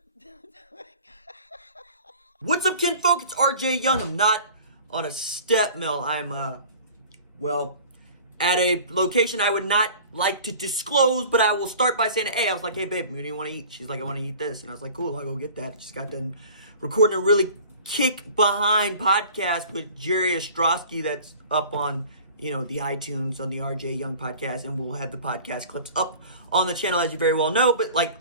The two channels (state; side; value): inverted; both; correlation -0.44